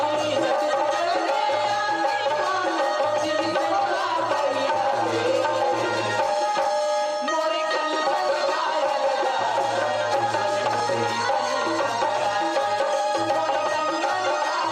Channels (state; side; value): identical; both; correlation 1.00